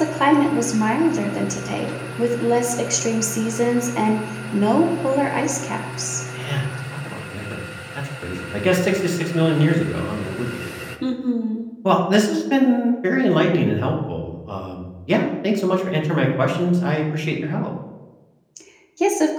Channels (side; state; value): both; identical; correlation 1.00